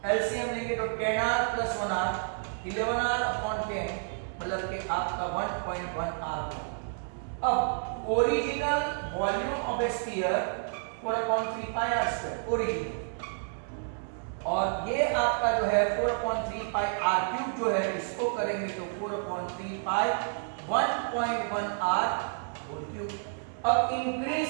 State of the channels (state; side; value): silent; left; digital silence